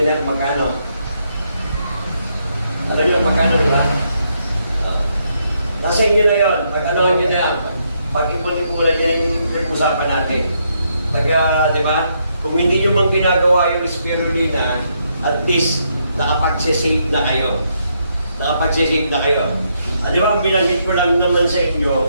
na kung magkano? Alam niyo kung magkano, di ba? Nasa inyo na yun. Pag-anohan niyo na, pag-ipon-ipunan niya yung usapan natin. Di ba? Kung hindi nyo mang ginagawa yung spirulina, at least nakapag-save na kayo. Di ba, ang binanggit ko lang naman sa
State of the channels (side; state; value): both; inverted; correlation -0.76